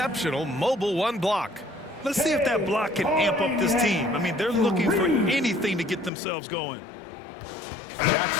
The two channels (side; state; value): right; drops out; at 6.1 s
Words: mobile one block. Let's see if that block can amp up this team. I mean, they're looking for anything to get themselves going.